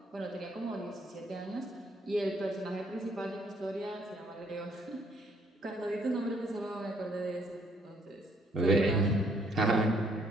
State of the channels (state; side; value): normal; both; correlation 0.67